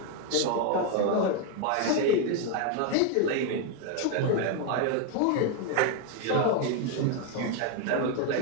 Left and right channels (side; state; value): both; different; correlation 0.01